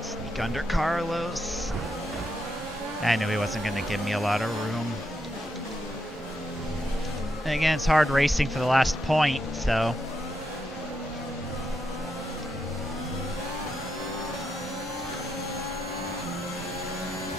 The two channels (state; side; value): normal; both; correlation 0.82